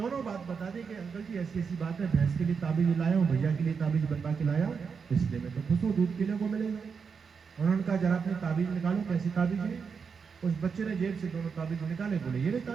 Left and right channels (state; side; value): quieter; left; 5.9 dB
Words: बात बता दी कि अंकल जी ऐसी ऐसी बात है, भैंस के लिए ताबीज लाया हूँ, भैया के लिए ताबीज बनवा के लाया हूँ, इसलिए मैं तो खुश हूँ, दूध पीने को मिलेगा। उन्होंने कहा जरा अपनी ताबीज निकालो, कैसी ताबीज है? उस बच्चे ने जेब से दोनों ताबीज निकाले, बोले ये